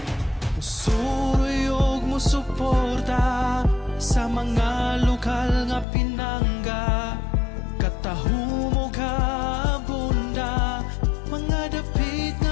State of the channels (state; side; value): drops out; right; at 5.9 s